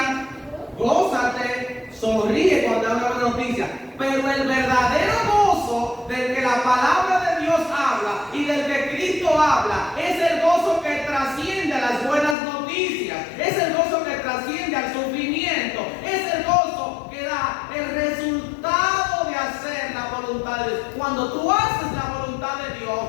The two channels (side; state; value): right; drops out; at 12.4 s